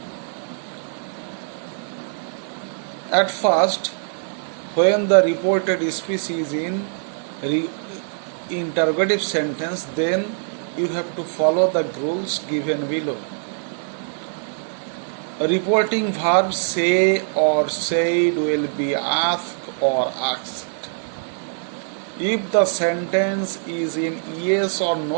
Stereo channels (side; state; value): left; silent; digital silence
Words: At first, when the reported speech is in interrogative sentence, then you have to follow the rules given below. Reporting verbs say or said will be asked or asked. If the sentence is in yes or